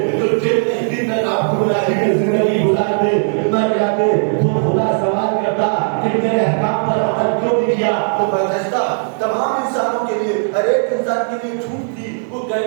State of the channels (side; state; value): left; silent; 68 dB below the other